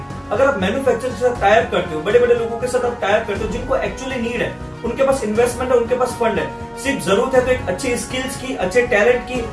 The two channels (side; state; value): both; identical; correlation 1.00